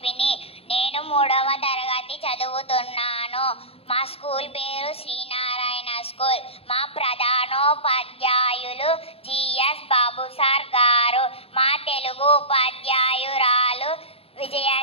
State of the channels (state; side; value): late; right; 0.28 ms